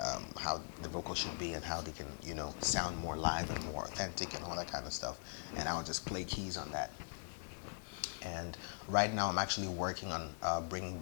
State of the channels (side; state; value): right; silent; digital silence